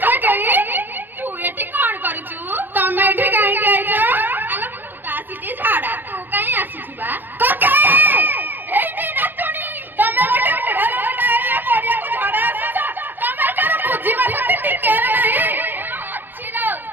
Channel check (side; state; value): left; late; 0.093 ms